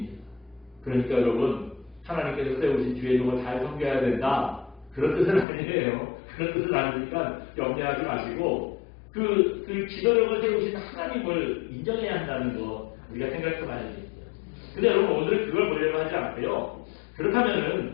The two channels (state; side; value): drops out; right; at 5.5 s